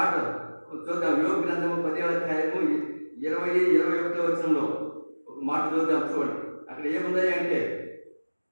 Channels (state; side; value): inverted; both; correlation -1.00